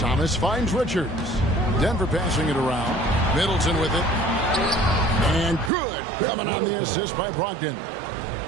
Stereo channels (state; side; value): drops out; left; at 5.7 s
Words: finds Richards. Denver passing it around. Middleton with it. And good. Coming on the assist by Brogdon.